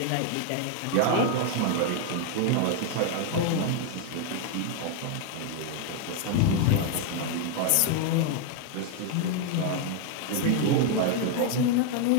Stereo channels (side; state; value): both; different; correlation 0.00